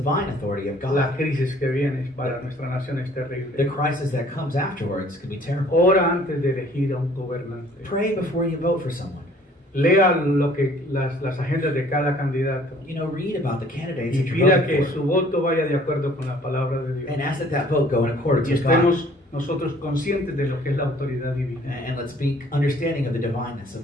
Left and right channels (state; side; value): normal; both; correlation 0.56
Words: authority of la God, crisis que viene para nuestra nación es the terrible. crisis that comes afterwards could be terrible. Ora antes de elegir a un gobernante. Pray before you vote for someone. Lea lo que las agendas de cada candidato You know, read about the candidates y that you're pida voting que for, su voto vaya de acuerdo con la palabra de Dios. and ask that that vote go in accordance Y with God. estemos nosotros conscientes de lo que es la autoridad divina. And let's be understanding of the divineness